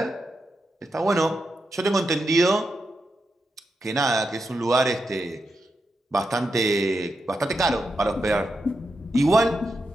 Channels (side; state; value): both; normal; correlation 0.86